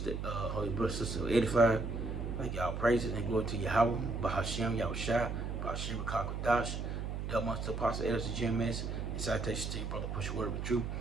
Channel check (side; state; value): right; noise; hum, 4 dB below the sound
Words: brother, sister, 85. Thank y'all praises and glory to Yahweh, Bahashem, Yahushua, Bahashem, Kakodash, Double Monster Apostle, Elders, GMS, and citation to your brother, push word of truth,